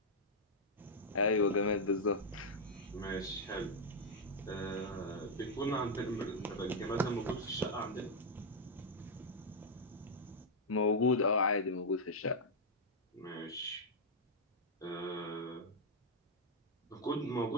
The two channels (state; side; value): normal; both; correlation -0.02